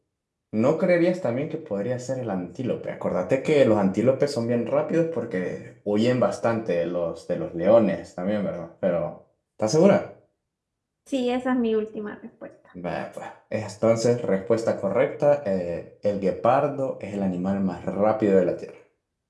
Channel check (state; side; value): identical; both; correlation 1.00